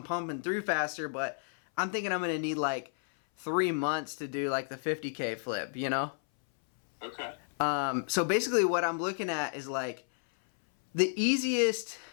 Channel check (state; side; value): silent; right; 57 dB below the other